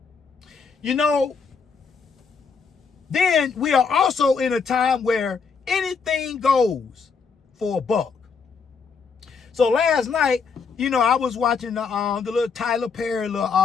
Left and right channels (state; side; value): quieter; right; 5.4 dB